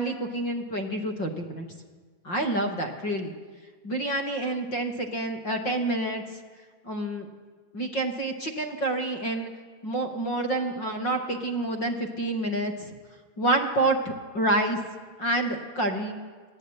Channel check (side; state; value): right; late; 5.6 ms